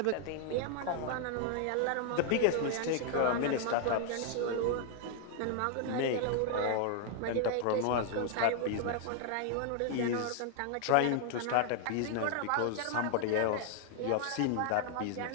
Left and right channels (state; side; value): different; both; correlation 0.00